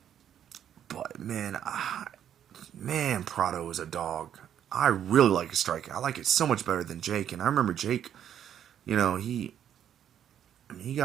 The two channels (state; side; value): quieter; left; 9.7 dB